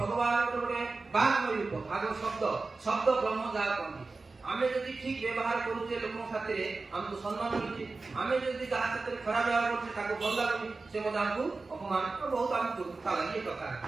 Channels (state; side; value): quieter; left; 3.8 dB